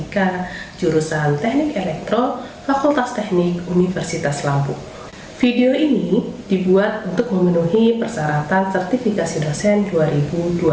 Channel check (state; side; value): identical; both; correlation 1.00